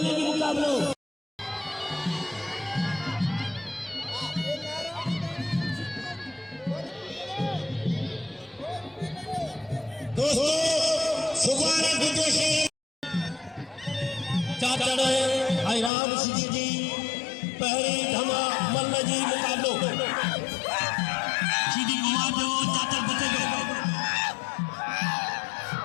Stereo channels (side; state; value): right; drops out; at 15.9 s